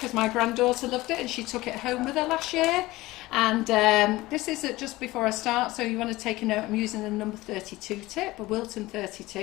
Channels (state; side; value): quieter; right; 19.0 dB